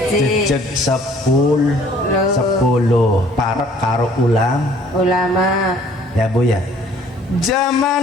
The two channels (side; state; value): both; normal; correlation 0.57